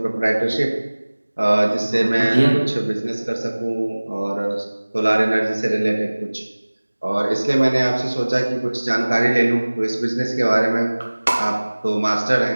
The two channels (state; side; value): inverted; both; correlation -1.00